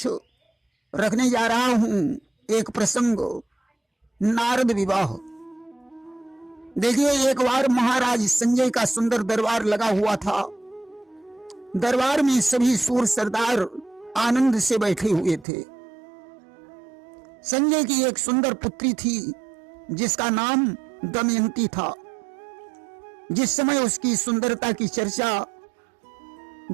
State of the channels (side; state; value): left; drops out; at 15.5 s